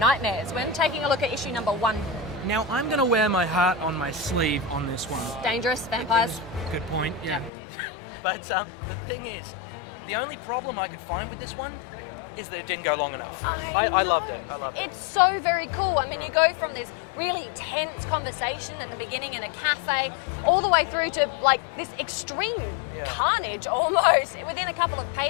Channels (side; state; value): right; drops out; at 7.5 s